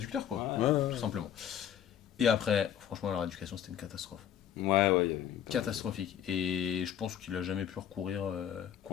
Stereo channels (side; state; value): right; quieter; 9.8 dB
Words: quoi. Ouais, Ouais. Tout simplement. Et après, franchement, leur éducation, c'était une catastrophe. ouais. Il y a- Catastrophique. Et je pense qu'il a jamais pu recourir En vrai, c'est un